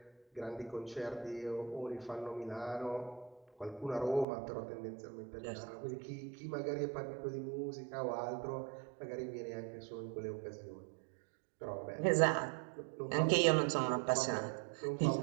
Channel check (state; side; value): drops out; left; at 4.2 s